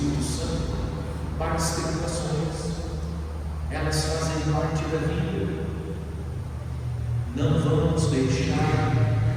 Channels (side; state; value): both; identical; correlation 1.00